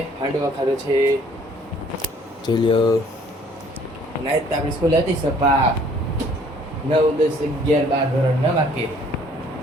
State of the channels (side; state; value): both; normal; correlation 0.58